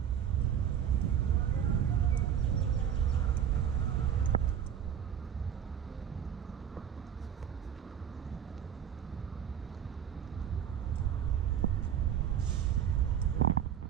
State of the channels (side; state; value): left; quieter; 9.0 dB